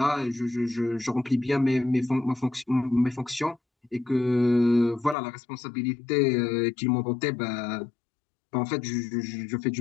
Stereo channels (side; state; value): right; drops out; at 5.2 s